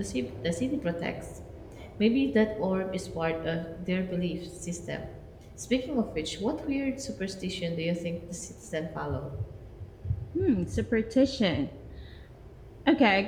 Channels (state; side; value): identical; both; correlation 1.00